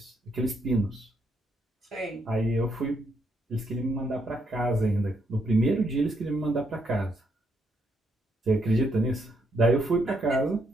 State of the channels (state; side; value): normal; both; correlation 0.76